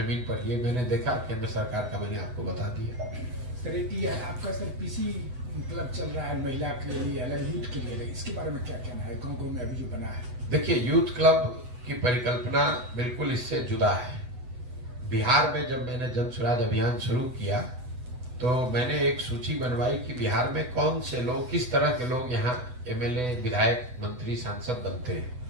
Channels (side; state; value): left; late; 8.0 ms